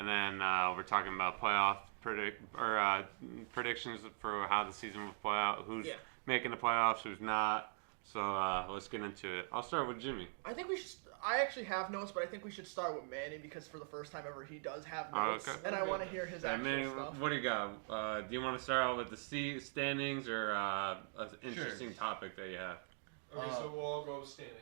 then we're talking about playoff predictions for how the season will play out, who's making the playoffs, who's not. So let's get into it. I'll start with Jimmy. I think we should. I actually have notes, but I think we should start with Manny because for the first time ever, he does have notes, and I want to hear his actual Manny, stuff. what do you got? Do you want to start out with the standings or an interesting topic that you have? Okay, so we'll all go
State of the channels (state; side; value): silent; left; 50 dB below the other